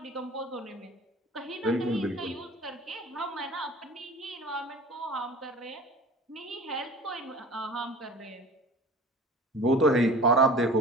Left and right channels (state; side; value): normal; both; correlation 0.41